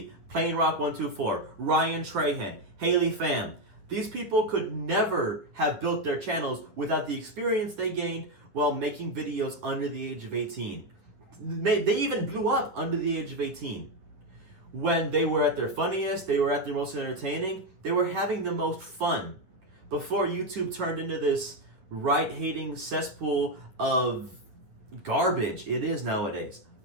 Plain Rock 124, Ryan Trahan, Haley Pham. These people could never have built their channels without the experience they gained while making videos under the age of 18. They even blew up under the age of 18. When they were at their funniest, they were at their most entertaining, they were having the most fun. Before YouTube turned into this right-hating cesspool of garbage it is nowadays.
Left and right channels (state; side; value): late; left; 10 ms